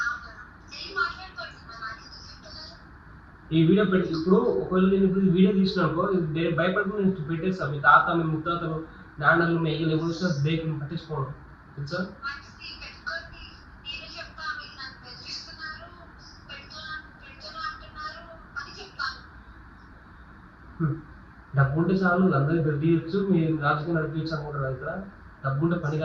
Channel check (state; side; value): identical; both; correlation 1.00